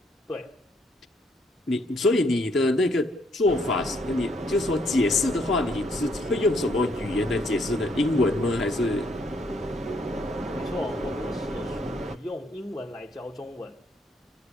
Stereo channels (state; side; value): normal; both; correlation 0.69